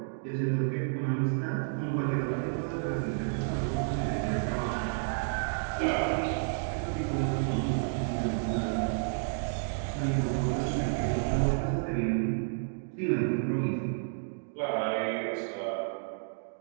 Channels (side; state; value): left; silent; digital silence